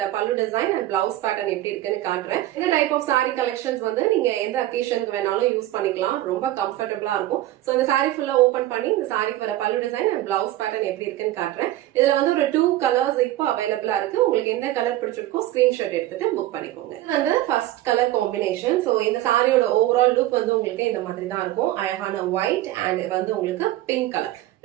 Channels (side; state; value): left; quieter; 15.0 dB